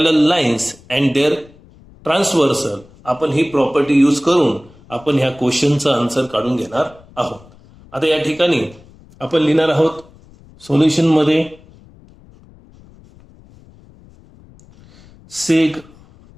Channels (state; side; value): noise; left; rumble, 25 dB below the sound